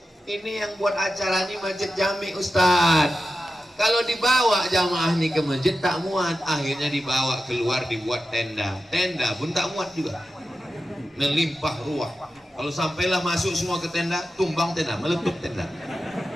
Ini yang buat acara ini Masjid Jami', Ustadz. Kalau dibawa jamaah ini ke masjid tak muat, akhirnya dibawa keluar dibuat tenda. Tenda pun tak muat juga, melimpah ruah. Kalau sampailah masuk semua ke tenda, tumbang tenda, meletup tenda.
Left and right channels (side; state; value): both; normal; correlation 0.92